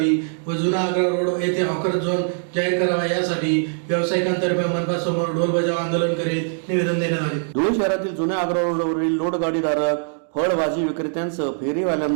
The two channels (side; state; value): left; silent; digital silence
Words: व जुना आग्रा रोड येथे हॉकर झोन जाहीर करावा यासाठी व्यावसायिकांतर्फे मनपासमोर ढोल बजाव आंदोलन करीत निवेदन देण्यात आले. धुळे शहरातील जुन्या आग्रा रोडवरील लोडगाडीधारक फळभाजी विक्रेत्यांसह